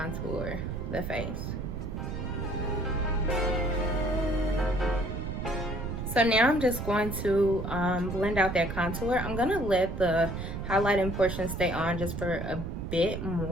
the face. So now I'm just going to blend out that contour. I'm going to let the highlighting portion stay on just for a bit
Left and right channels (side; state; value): right; noise; rumble, 5 dB below the sound